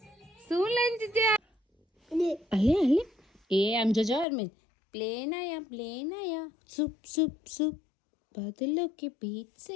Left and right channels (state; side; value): drops out; right; at 4.2 s